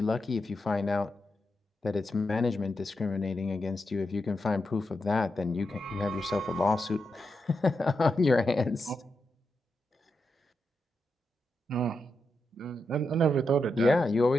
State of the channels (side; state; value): both; normal; correlation 0.86